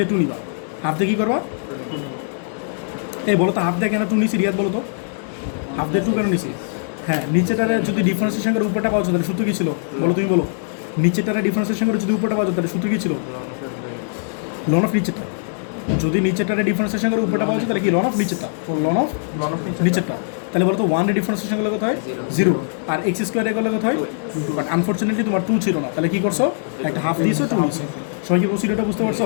2 নিবা। হাফ দিয়ে কী করবা? এই বলো তো হাফ দিয়ে কেন 2 নিছি রিয়াদ? বলো তো হাফ দিয়ে 2 কেন নিছি? হ্যাঁ নিচেটারে যদি ডিফারেন্সিয়েশন করে উপরটা পাওয়া যেত তাহলে সূত্র কী ছিল বলো? তুমি বলো নিচেটারে ডিফারেন্সিয়েশন করে যদি উপরটা পাওয়া যেত তাহলে সূত্র কী ছিল? লন অফ নিচেটা। যদি নিচেটারে ডিফারেন্সিয়েশন করে উপরটা পাওয়া যায় তাহলে কি লন অফ নিচেটা, লন অফ নিচেরটা। তাহলে বলো তো 1 এর ডিফারেন্সিয়েশন করলে কত হয়? 0, আর এক্স স্কোয়ারে করলে কত হয়? বাট আনফর্চুনেটলি তোমার 2 ছিল না, তাহলে কি করছো? একটা হাফ দিয়েছো, 2 নিয়েছো। সবাই কি প্রসিডিওরটা বুঝতে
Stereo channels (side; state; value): right; silent; 60 dB below the other